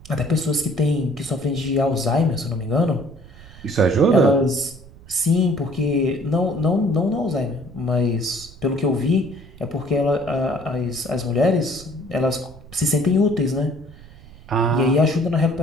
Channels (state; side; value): noise; right; rumble, 20 dB below the sound